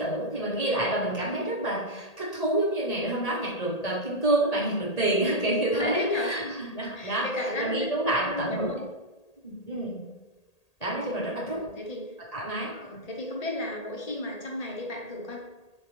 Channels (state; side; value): late; right; 1.8 ms